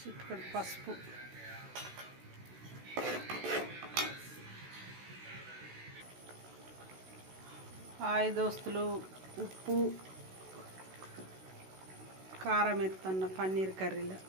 పసుపు, హాయ్ దోస్తులు, ఉప్పు, కారం ఎత్తన్న పన్నీర్ కర్రీలో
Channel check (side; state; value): left; late; 16 ms